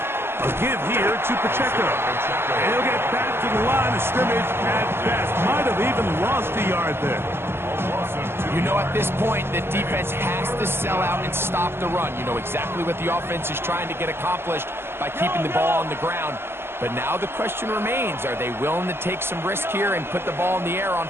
A give here to Pacheco. And he'll get back to the line of scrimmage at best. Might have even lost a yard there. You know, at this point, the defense has to sell out and stop the run. You know exactly what the offense is trying to get accomplished by keeping the ball on the ground. But now the question remains, are they willing to take some risk here and put the ball in the air on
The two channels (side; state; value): left; late; 0.11 ms